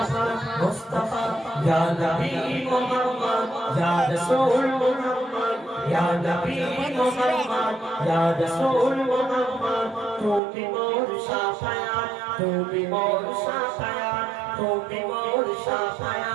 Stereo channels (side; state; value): left; drops out; at 10.4 s